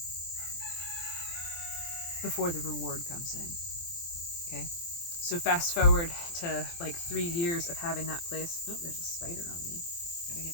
before the reward comes in. Okay? So fast forward to like 3 years of having that place. Oh, there's a spider on me. Gotta get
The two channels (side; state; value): right; late; 23 ms